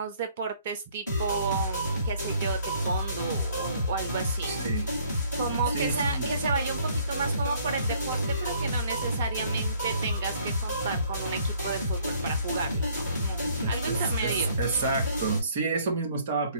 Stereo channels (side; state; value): both; inverted; correlation -0.62